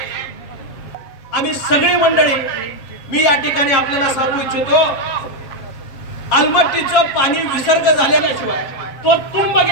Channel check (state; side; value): late; right; 7.4 ms